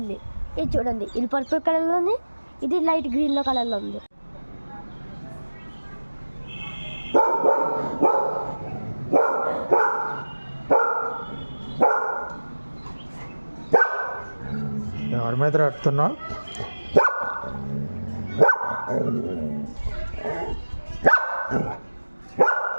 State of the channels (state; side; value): inverted; both; correlation -1.00